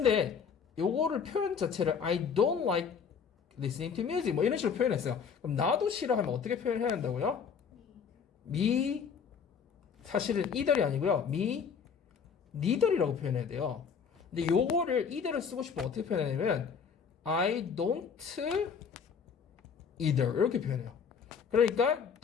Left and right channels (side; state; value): right; quieter; 6.5 dB